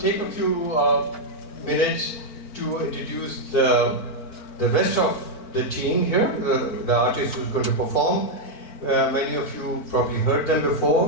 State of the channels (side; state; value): right; late; 4.4 ms